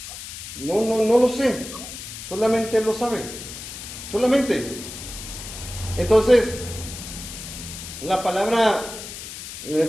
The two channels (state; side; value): noise; left; hiss, 10 dB below the sound